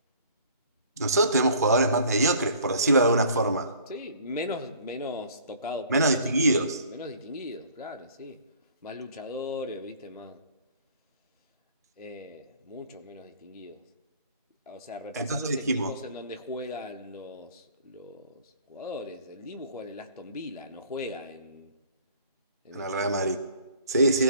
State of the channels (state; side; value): inverted; both; correlation -0.53